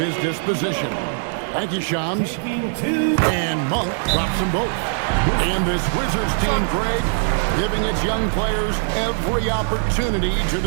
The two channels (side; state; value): left; silent; digital silence